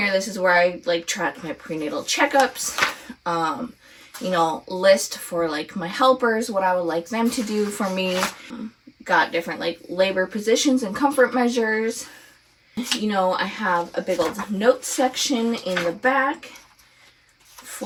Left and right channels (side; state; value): both; identical; correlation 1.00